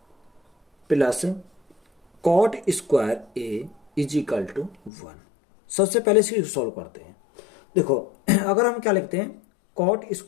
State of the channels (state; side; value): drops out; right; at 4.9 s